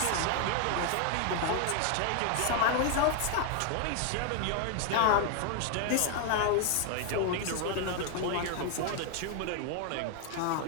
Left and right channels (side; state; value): both; different; correlation 0.01